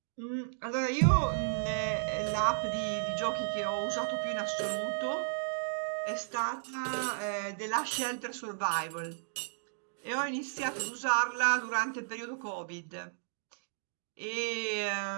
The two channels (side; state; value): left; silent; digital silence